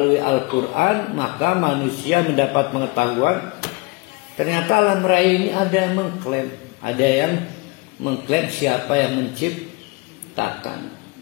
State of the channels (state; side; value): quieter; right; 25.6 dB